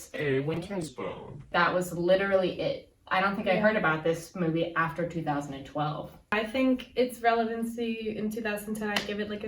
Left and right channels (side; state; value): both; identical; correlation 1.00